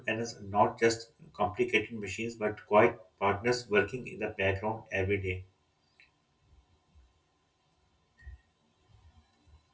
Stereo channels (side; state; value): both; identical; correlation 1.00